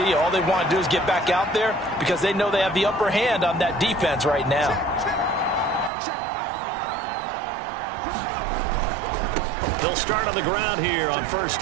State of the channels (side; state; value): left; drops out; at 5.9 s